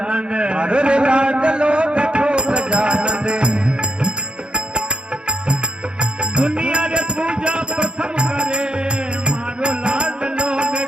મારો રે લાડલો બેઠો ગજાનન दुनिया रे पूजा प्रथम करे मारो लाडलो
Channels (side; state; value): left; late; 0.051 ms